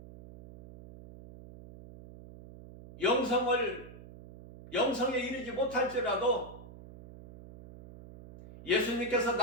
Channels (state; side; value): noise; right; hum, 17 dB below the sound